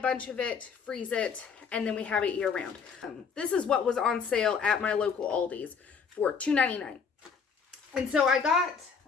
of it, freeze it, and then we have it year round. This is what was on sale at my local Aldi's for $2.99. And so I got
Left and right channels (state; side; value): quieter; right; 6.0 dB